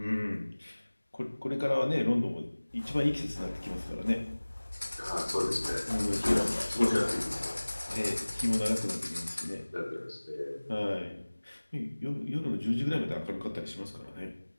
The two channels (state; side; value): inverted; both; correlation -1.00